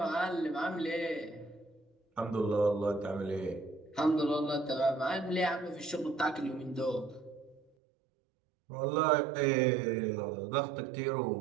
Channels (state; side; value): drops out; left; at 7.6 s